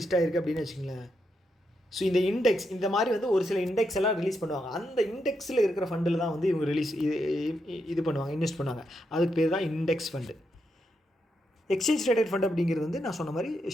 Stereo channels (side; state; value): both; normal; correlation 0.82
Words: ஆகிருக்கு அப்படின்னு வச்சுக்கோங்களேன். ஸோ இந்த இண்டெக்ஸ் இந்த மாதிரி வந்து ஒரு சில இண்டெக்ஸ் எல்லாம் ரிலீஸ் பண்ணுவாங்க. அந்த இண்டெக்ஸில் இருக்கிற ஃபண்டில் தான் வந்து இவங்க இது பண்ணுவாங்க, இன்வெஸ்ட் பண்ணுவாங்க. அதுக்கு பேர் தான் index fund. Exchange traded fund அப்படிங்கிறது வந்து நான் சொன்ன மாதிரி